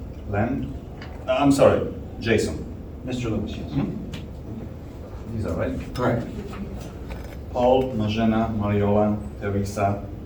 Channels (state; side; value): identical; both; correlation 1.00